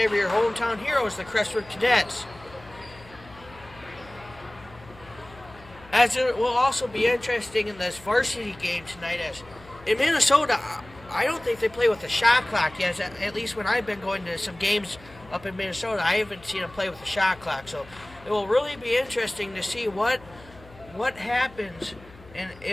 of your hometown heroes, the Crestwood Cadets. As it will also be interesting in this varsity game tonight, as in Minnesota, I don't think they play with a shot clock yet. At least when I've been going to some games up in Minnesota, I haven't seen them play with a shot clock. So it will really be interesting to see what happens and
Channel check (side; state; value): left; noise; hum, 22 dB below the sound